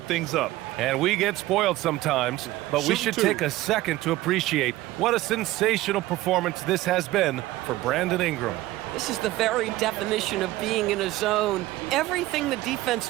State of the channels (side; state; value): left; quieter; 17.1 dB